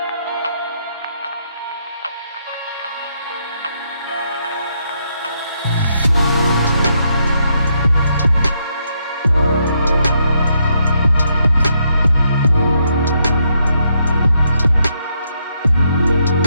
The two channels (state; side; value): inverted; both; correlation -0.77